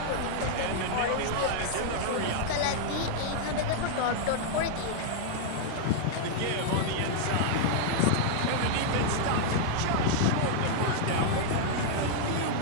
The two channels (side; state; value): both; different; correlation -0.01